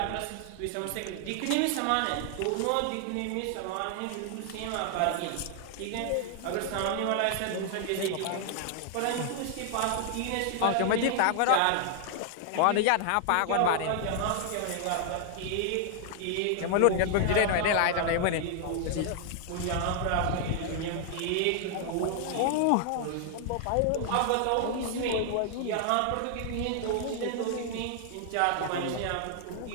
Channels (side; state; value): both; different; correlation 0.00